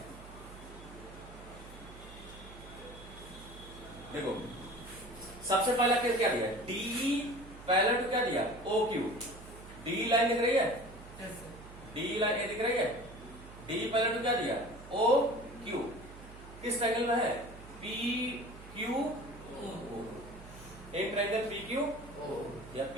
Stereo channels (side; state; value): right; noise; hum, 16 dB below the sound